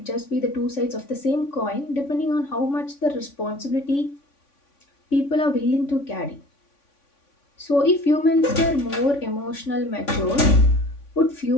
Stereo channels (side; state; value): right; late; 3.5 ms